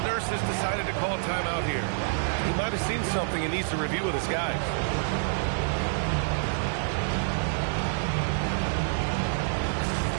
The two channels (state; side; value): silent; left; 56 dB below the other